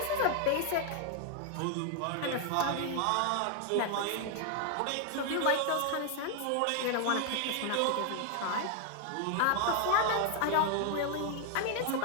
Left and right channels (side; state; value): both; different; correlation 0.00